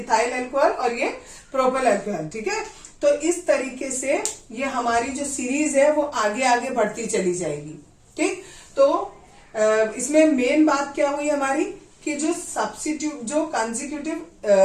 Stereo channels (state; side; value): identical; both; correlation 1.00